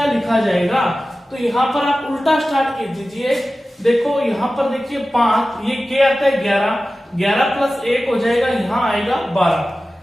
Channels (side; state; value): both; normal; correlation 0.95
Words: लिखा जाएगा। तो यहां पर आप उल्टा स्टार्ट कर दीजिए, देखो यहाँ पर देखिए 5, ये क्या आता है 11, 11 प्लस 1 हो जाएगा, यहाँ आएगा 12,